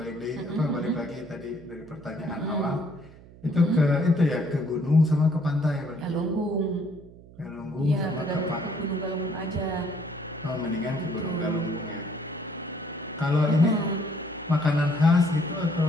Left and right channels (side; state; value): right; noise; hum, 21 dB below the sound